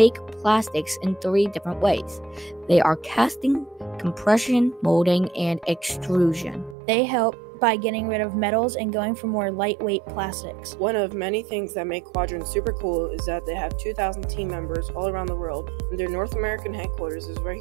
plastics in 3 different ways. They are casting, compression, molding, and extrusion. They help by getting rid of metals and going for more lightweight plastics. One of many things that make Quadrant super cool is that they have 2,000 team members all around the world, and their North American headquarters is right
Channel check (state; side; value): drops out; left; at 6.8 s